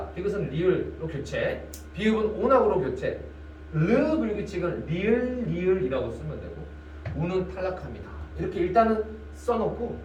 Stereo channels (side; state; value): both; identical; correlation 1.00